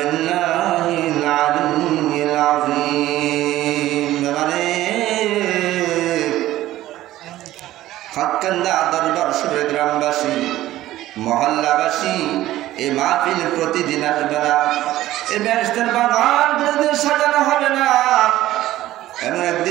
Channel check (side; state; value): left; quieter; 14.9 dB